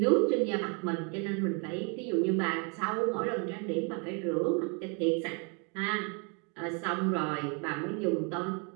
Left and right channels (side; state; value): left; quieter; 35.2 dB